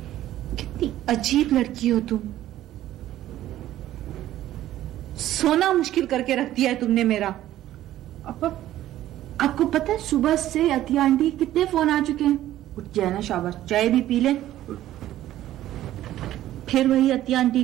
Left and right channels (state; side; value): quieter; left; 13.6 dB